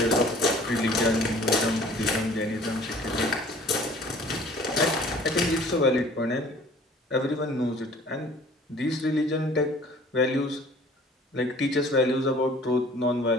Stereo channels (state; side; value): normal; both; correlation 0.51